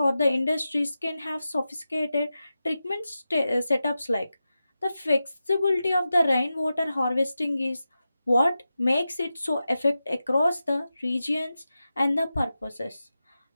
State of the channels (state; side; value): inverted; both; correlation -0.92